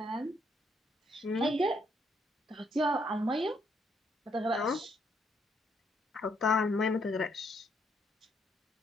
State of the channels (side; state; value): both; normal; correlation 0.72